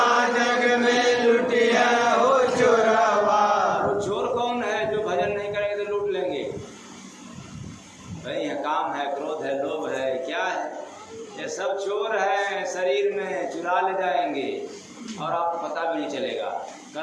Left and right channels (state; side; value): identical; both; correlation 1.00